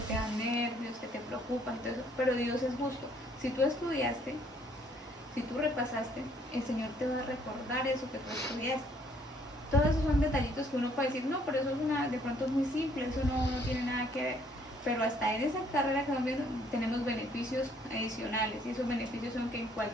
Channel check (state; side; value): normal; both; correlation 0.64